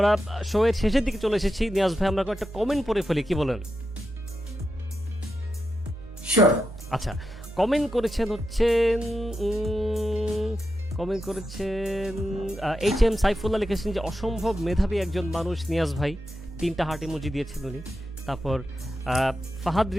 শো এর শেষের দিকে চলে এসেছি। নিয়াজ ভাই, আমরা একটা কমেন্ট পড়ে ফেলি, কি বলেন? শিওর। আচ্ছা, কমেন্ট করেছেন এইচ এম সাইফুল্লাহ, লিখেছেন যে অসম্ভব মেধাবী একজন মানুষ নিয়াজ ভাই, 3টা হার্ট ইমোজি দিয়েছেন উনি। তারপর ফাহাদ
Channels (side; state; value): both; normal; correlation 0.88